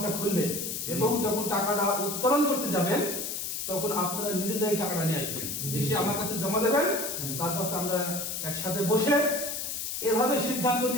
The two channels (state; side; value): noise; left; hiss, 4 dB below the sound